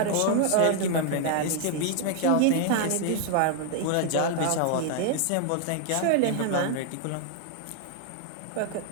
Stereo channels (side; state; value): both; different; correlation 0.00